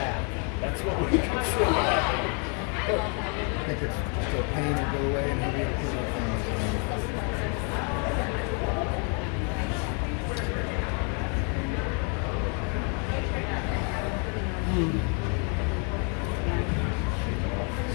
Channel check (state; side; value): quieter; right; 37.7 dB